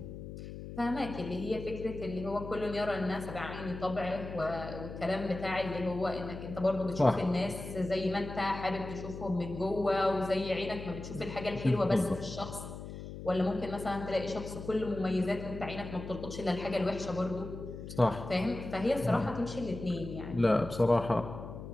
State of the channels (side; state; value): left; noise; hum, 10 dB below the sound